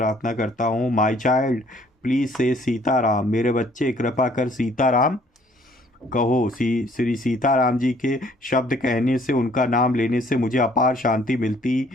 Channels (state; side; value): normal; both; correlation 0.61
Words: करता हूँ, माई चाइल्ड प्लीज से सीताराम, मेरे बच्चे कृपा कर सीताराम कहो। श्री सीताराम जी के शब्द कहने से, उनका नाम लेने से मुझे अपार शांति मिलती